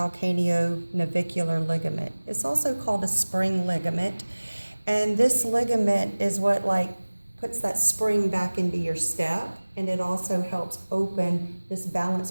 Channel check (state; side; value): inverted; both; correlation -1.00